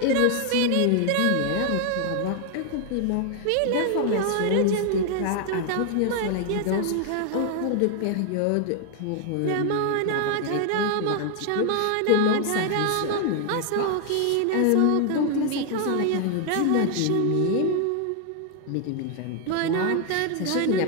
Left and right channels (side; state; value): both; different; correlation 0.00